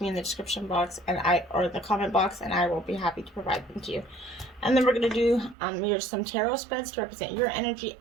in the description box or the comment box, and I will be happy to provide them to you. And then we're going to do some tarot spreads to represent your energy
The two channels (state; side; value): drops out; left; at 5.6 s